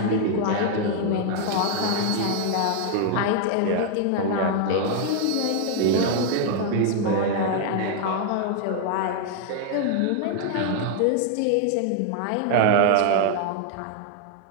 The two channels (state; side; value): different; both; correlation 0.00